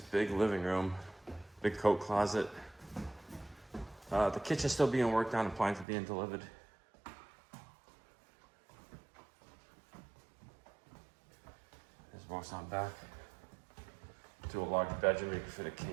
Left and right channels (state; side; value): drops out; left; at 5.9 s